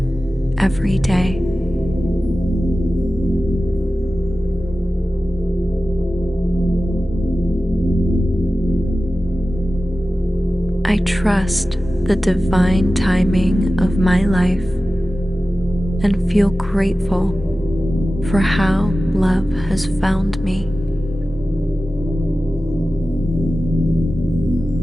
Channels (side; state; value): both; normal; correlation 0.95